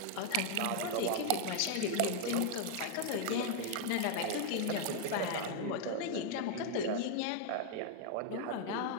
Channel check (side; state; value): both; different; correlation 0.00